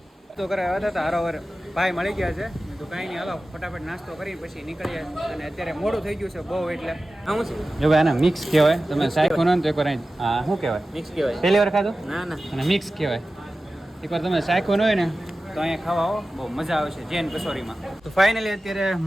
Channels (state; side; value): normal; both; correlation 0.95